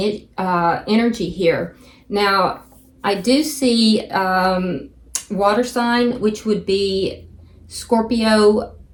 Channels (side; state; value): both; identical; correlation 1.00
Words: energy here. Now, I do see water sign, which would be Scorpio,